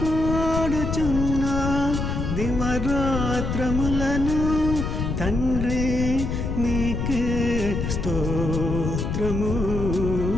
దివరాత్రములను తండ్రి నీకే స్తోత్రము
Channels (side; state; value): left; noise; rumble, 2 dB below the sound